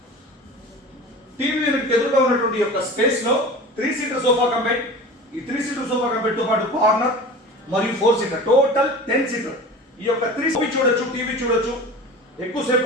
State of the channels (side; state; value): both; normal; correlation 0.36